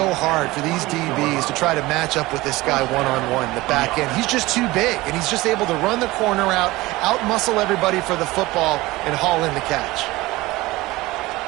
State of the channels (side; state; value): left; quieter; 19.8 dB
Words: hard for these DBs to try to match up with this guy one-on-one in the back end. He's just too big, and he's just able to run the corner out-muscle everybody for the football, and haul in the catch.